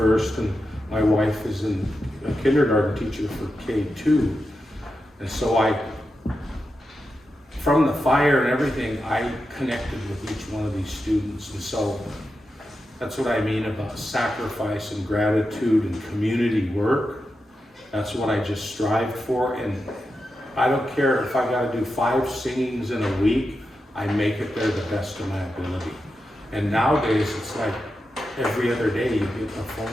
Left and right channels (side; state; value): both; normal; correlation 0.89